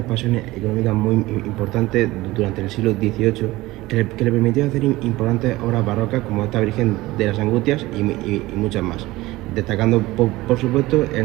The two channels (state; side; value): quieter; left; 18.9 dB